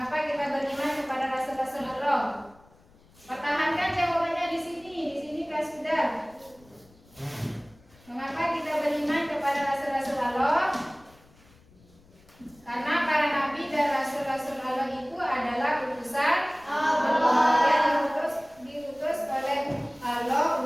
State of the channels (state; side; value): noise; left; rumble, 27 dB below the sound